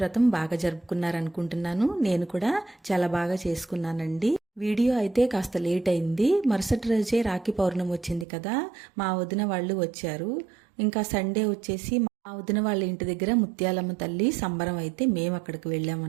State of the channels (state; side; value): drops out; left; at 8.2 s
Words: బాగా జరుపుకున్నారనుకుంటున్నాను. నేను కూడా చాలా బాగా చేసుకున్నానండి. వీడియో అయితే కాస్త లేట్ అయింది. మరుసటి రోజే రాఖీ పౌర్ణమి వచ్చింది కదా, మా వదిన వాళ్ళు వచ్చారు. ఇంకా సండే వచ్చేసి మా వదిన వాళ్ళ ఇంటి దగ్గర ముత్యాలమ్మ తల్లి సంబరం అయితే మేము అక్కడికి